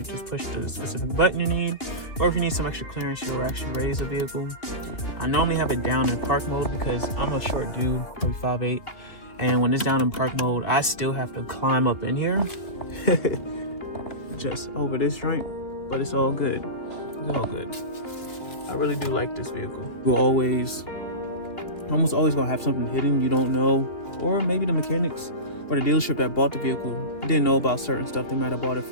just push the specific button you need. Or if you need some extra clearance, you'll actually raise the vehicle. I normally have it down in park mode because I'm a short dude, probably 5'8", and when it's down in park mode, I still have to climb up in here just over this joint, but it's all good. It's all good. I really do like this vehicle. You'll almost always gonna have something hidden you don't know, or maybe the mechanics or the dealership that bought the vehicle didn't know about certain stuff. They might have bought it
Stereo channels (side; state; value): right; late; 3.2 ms